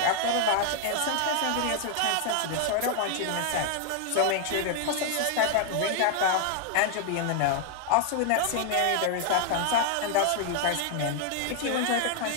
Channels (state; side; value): different; both; correlation 0.00